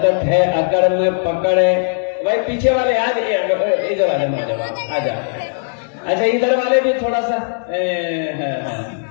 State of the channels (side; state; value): right; silent; 67 dB below the other